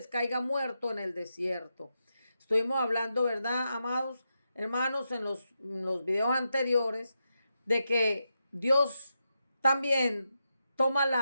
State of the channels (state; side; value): inverted; both; correlation -0.86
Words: caiga muerto en el desierto. Estuvimos hablando, ¿verdad, amados hermanos, en los videos anteriores, de que Dios también toma